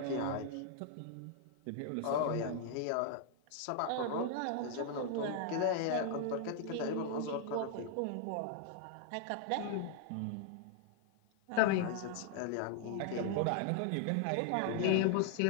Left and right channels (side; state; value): both; different; correlation -0.01